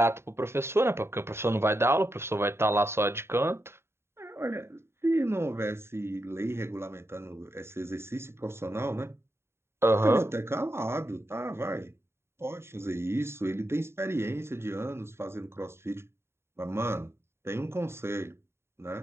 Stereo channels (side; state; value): left; late; 0.12 ms